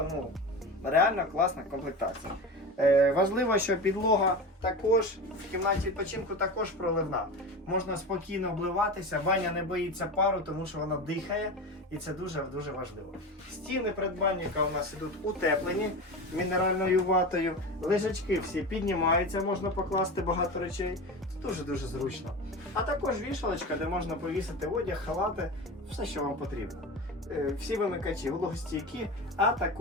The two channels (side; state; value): both; normal; correlation 0.27